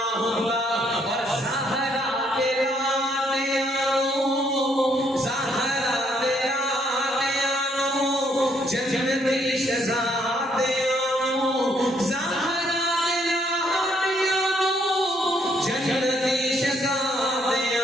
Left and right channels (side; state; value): both; normal; correlation 0.70